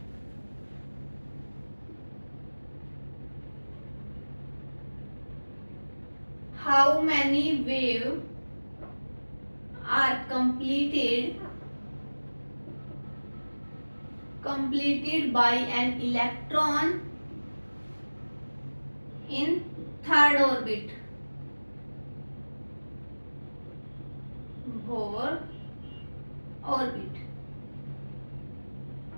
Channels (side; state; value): both; inverted; correlation -1.00